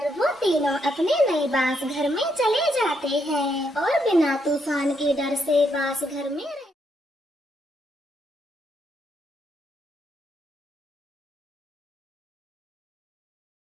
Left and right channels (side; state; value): both; normal; correlation 0.77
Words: वो तीनों अपने नए बांस घर में चले जाते हैं और बिना तूफान के डर से बांस घर में